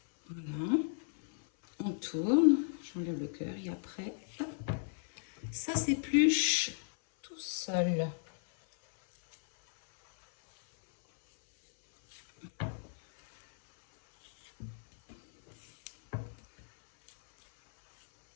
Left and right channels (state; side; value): silent; right; 55 dB below the other